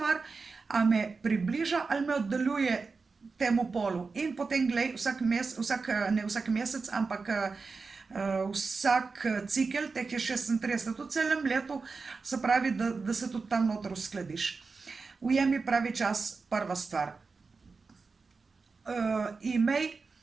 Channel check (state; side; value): quieter; left; 4.4 dB